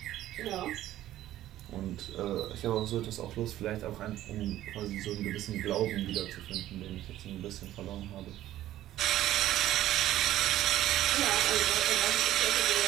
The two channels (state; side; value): quieter; left; 13.7 dB